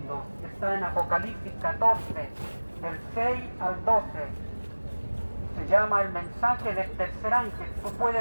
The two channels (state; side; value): inverted; both; correlation -1.00